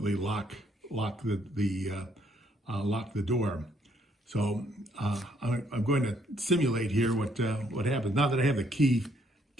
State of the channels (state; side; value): normal; both; correlation 0.69